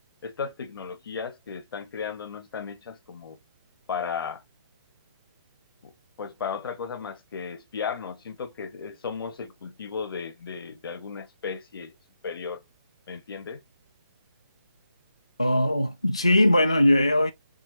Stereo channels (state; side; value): inverted; both; correlation -0.83